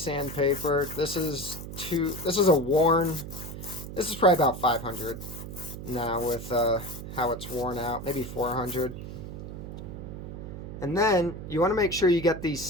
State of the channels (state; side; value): noise; right; hum, 9 dB below the sound